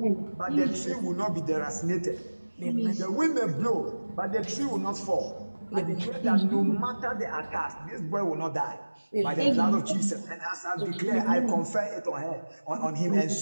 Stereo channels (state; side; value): inverted; both; correlation -1.00